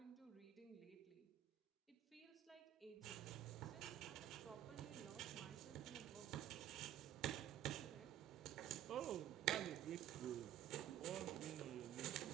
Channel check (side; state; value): left; quieter; 11.6 dB